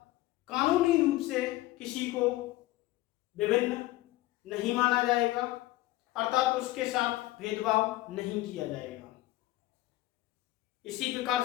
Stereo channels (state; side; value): quieter; right; 17.4 dB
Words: कानूनी रूप से किसी को विभिन्न नहीं माना जाएगा अर्थात उसके साथ भेदभाव नहीं किया जाएगा। इसी प्रकार